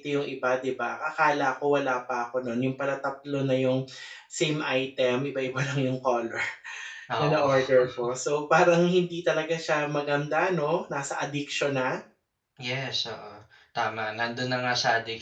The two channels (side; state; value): both; identical; correlation 1.00